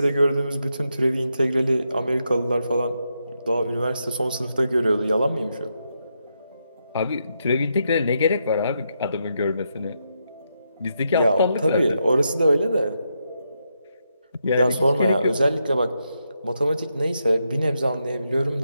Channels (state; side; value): inverted; both; correlation -0.82